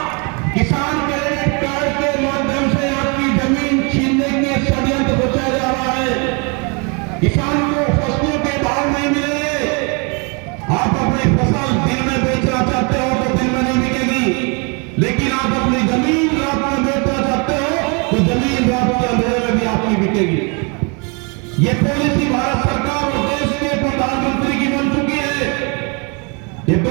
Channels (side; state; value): left; quieter; 32.9 dB